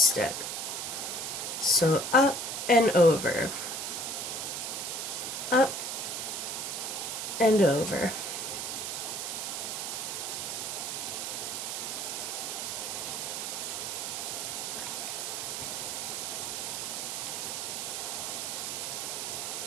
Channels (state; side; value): noise; right; hiss, 3 dB below the sound